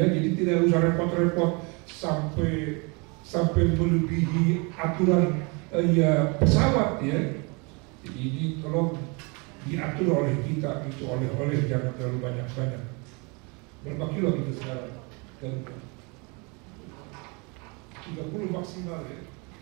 jadi tidak usah repot-repot sampai melebihi aturan ya pesawat ya. Jadi ini tolong diatur oleh kita, itu oleh-oleh jangan terlalu banyak-banyak. Berapa kilo kita sekarang? 30 maksimal ya.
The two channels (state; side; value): quieter; left; 30.4 dB